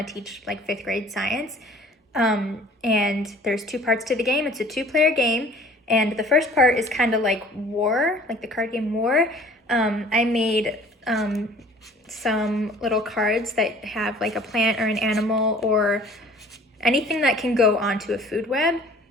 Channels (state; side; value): normal; both; correlation 0.50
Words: to teach like 5th grade science. And there's 2 parts to the game. It's a 2-player game, and the first part is kind of like War, like the card game War. I made some little cards that have like a plant or an animal or anything that can go onto a food web.